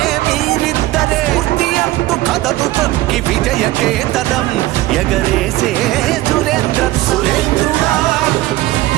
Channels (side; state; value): left; quieter; 17.2 dB